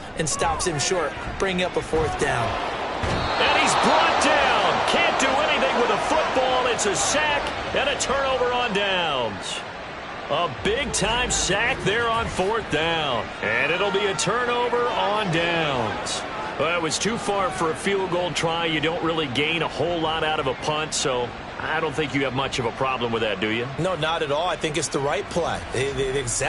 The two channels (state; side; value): identical; both; correlation 1.00